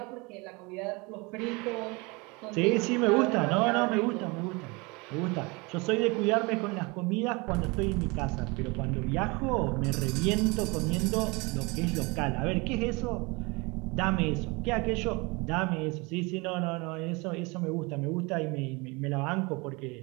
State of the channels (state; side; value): quieter; left; 27.0 dB